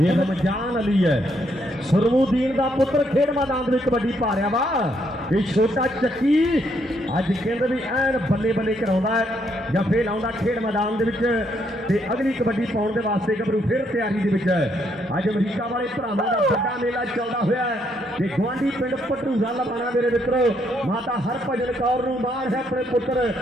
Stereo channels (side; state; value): both; normal; correlation 0.73